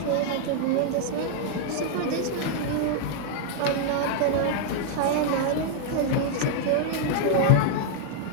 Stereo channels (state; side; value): different; both; correlation 0.00